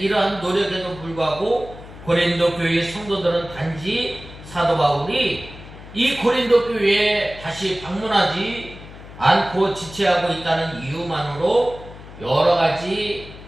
노력에도 불구하고 고린도 교회의 성도들은 단지 사도 바울이 이 고린도 교회에 다시 방문하지 않고 지체하고 있다는 이유만으로 여러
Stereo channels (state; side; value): noise; left; hum, 16 dB below the sound